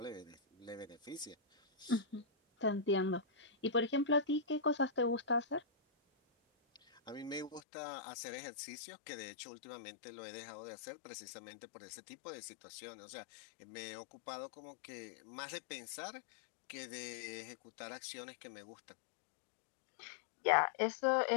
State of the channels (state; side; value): drops out; right; at 7.6 s